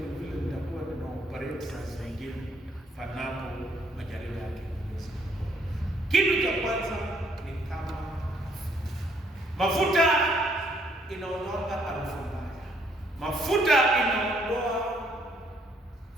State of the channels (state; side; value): normal; both; correlation 0.67